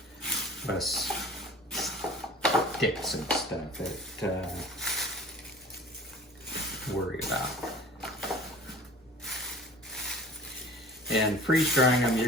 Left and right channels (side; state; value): both; normal; correlation 0.44